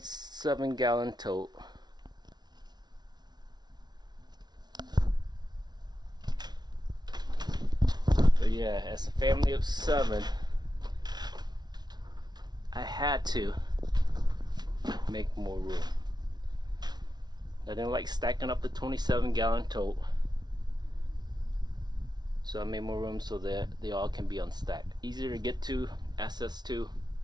tote. But yeah, as a family of 7, I had to make more room. I didn't like stacking up the 27-gallon tote. So I made more room so that they all can be unstacked. Easier to get to, access to.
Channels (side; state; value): left; late; 0.20 ms